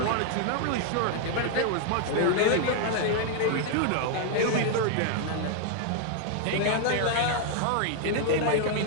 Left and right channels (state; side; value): different; both; correlation 0.00